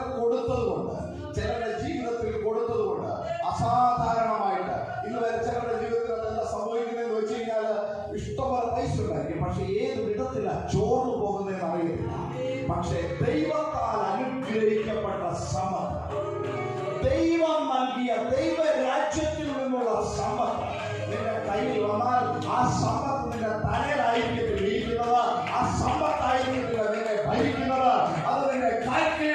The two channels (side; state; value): both; identical; correlation 1.00